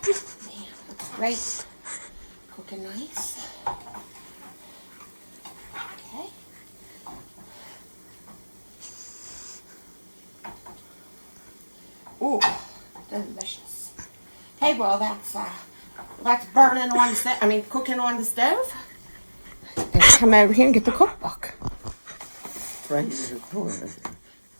Man, looks great. Cooking nice. Okay. Ooh, delicious. Okay, well that's burning on the stove. I mean, cooking on the stove. And come over here and get the cookbook. Right in the corner.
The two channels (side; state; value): both; inverted; correlation -1.00